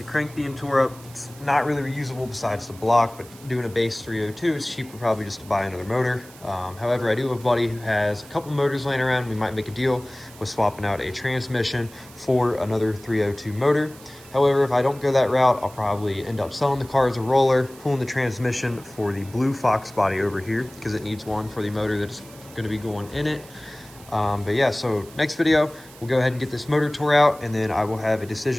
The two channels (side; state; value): right; noise; hiss, 21 dB below the sound